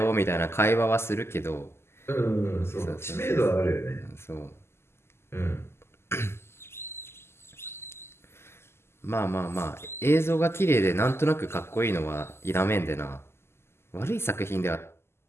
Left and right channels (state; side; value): late; right; 0.12 ms